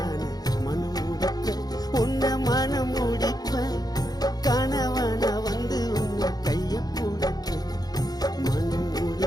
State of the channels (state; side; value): late; right; 0.19 ms